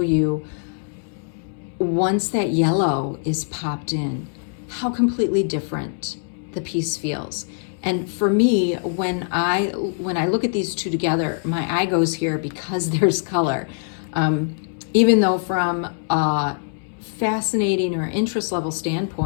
you, once that yellow is popped in, how completely different the piece feels. And for me, when I look at these two together, my eye goes here because there's color. Even though from a fascinating or interest level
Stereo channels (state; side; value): silent; right; 64 dB below the other